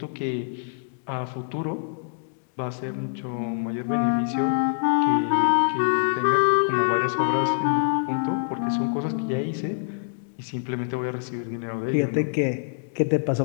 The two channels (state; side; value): silent; right; digital silence